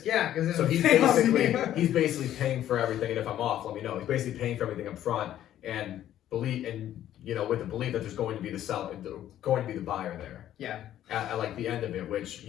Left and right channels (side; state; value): right; quieter; 11.9 dB